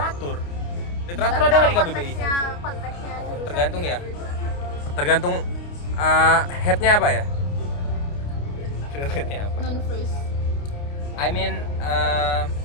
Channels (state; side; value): late; right; 29 ms